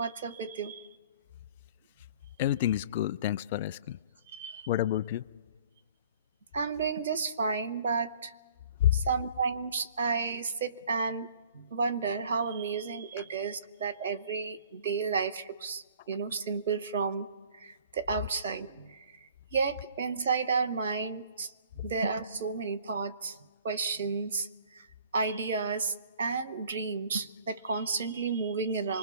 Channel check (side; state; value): both; inverted; correlation -0.52